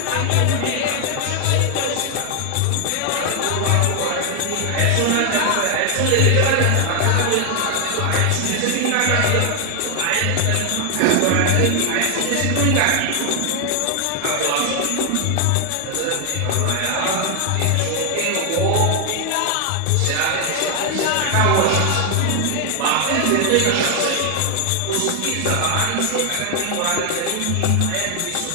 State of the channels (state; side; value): different; both; correlation 0.00